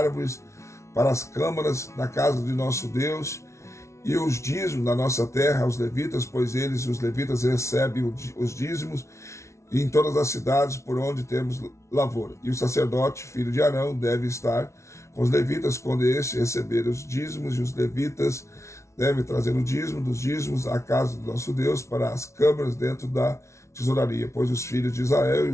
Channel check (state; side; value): late; right; 0.13 ms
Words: para as câmaras da casa de nosso Deus, e os dízimos da nossa terra aos levitas, pois eles, os levitas, recebem os dízimos em todas as cidades por onde temos lavoura. E o sacerdote, filho de Arão, deve estar com os levitas quando estes receberem os dízimos, e os levitas devem trazer o dízimo dos dízimos à casa do nosso Deus para as câmaras dentro da tesouraria, pois os filhos de Israel e